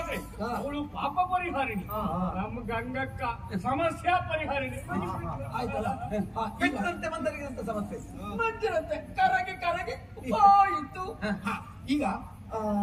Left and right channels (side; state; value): both; identical; correlation 1.00